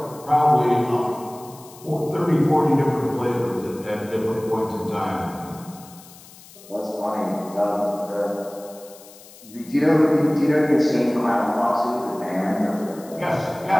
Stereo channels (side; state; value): left; noise; hiss, 21 dB below the sound